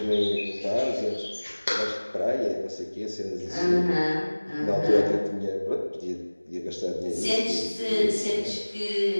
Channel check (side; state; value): both; inverted; correlation -1.00